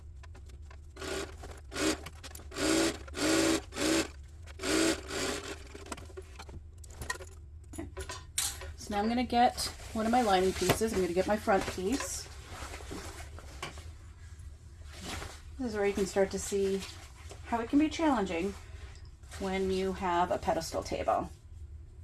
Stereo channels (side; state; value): both; identical; correlation 1.00